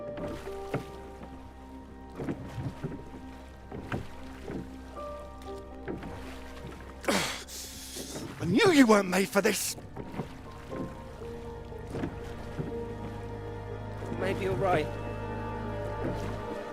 I knew you weren't made for this! Maybe you're right.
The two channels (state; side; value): identical; both; correlation 1.00